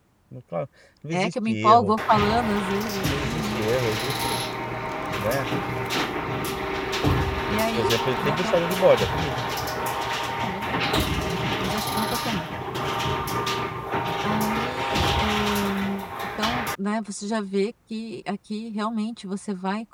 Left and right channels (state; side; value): identical; both; correlation 1.00